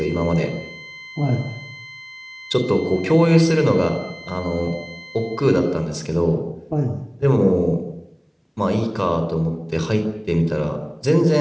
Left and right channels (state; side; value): identical; both; correlation 1.00